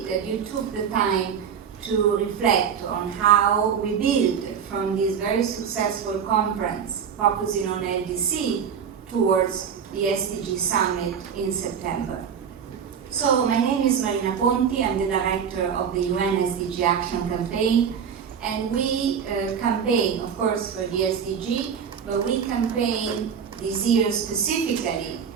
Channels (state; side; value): quieter; left; 7.4 dB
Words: that you took the time to reflect on how we build from this very successful conference focusing on LDC towards the SDG Summit in September. So my name is Marina Ponti, I'm the director of the UN SDG Action Campaign, and we campaign, of course, for the SDG, but we campaign this year specifically